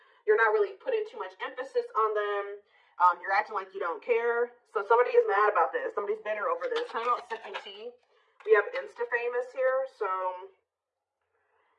You're not really putting too much emphasis on them. You're acting like you don't care. So somebody is mad about this. Somebody's bitter over this. Talking about sipping tea. We have Insta-famous here. So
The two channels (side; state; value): both; identical; correlation 1.00